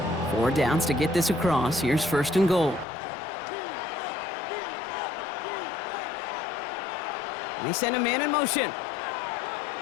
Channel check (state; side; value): drops out; right; at 2.9 s